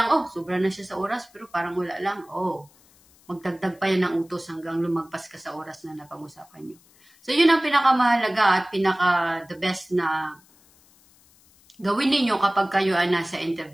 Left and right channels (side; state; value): left; noise; hiss, 29 dB below the sound